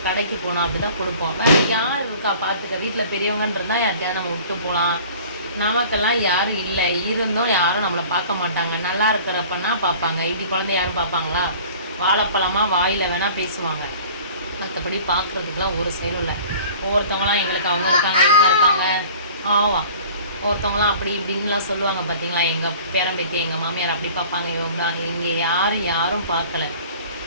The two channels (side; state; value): both; inverted; correlation -0.46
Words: கடைக்கு போனால் அப்படி தான் கொடுப்போம். யார் இருக்கா பார்த்துக்க, வீட்டில் பெரியவங்கன்றதான் யார்கிட்டயாவது நம்ம விட்டு போகலாம். நமக்கெல்லாம் யாரும் இல்லை, இருந்தும் யாரும் நம்மளை பார்க்க மாட்டாங்க. நல்லா இருக்கிறப்பன்னா பார்ப்பாங்க. இப்படி குழந்தை யாரும் பார்ப்பாங்களா? வாழைப்பழமாக வாயில் வேணால் பேசுவாங்க, மற்றபடி பார்க்குறதுக்குலாம் ஒரு செயலும் இல்லை. ஒவ்வொருத்தவங்களாம் எங்களுக்கு அவங்க இருக்காங்க இவங்க இருக்காங்க ஒருத்தவங்களாம் அப்படி இப்படின்லாம் சொல்லுவாங்க. பார்த்தீங்களா, எங்கள் பேரம்பேத்தி எங்கள் மாமியார் அப்படி பார்ப்பாங்க இவங்களா. இங்கே யாரும் பார்க்கல.